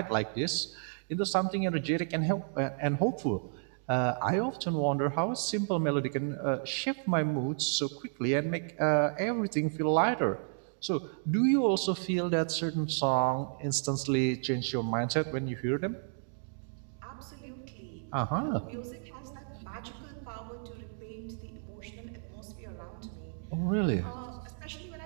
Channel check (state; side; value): silent; left; digital silence